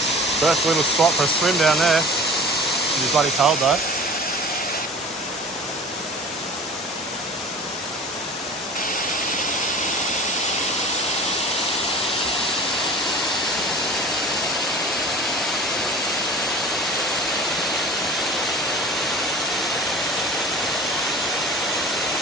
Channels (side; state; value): both; normal; correlation 0.39